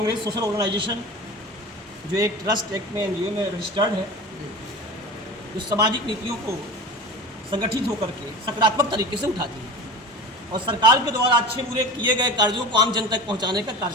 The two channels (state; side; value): normal; both; correlation 0.32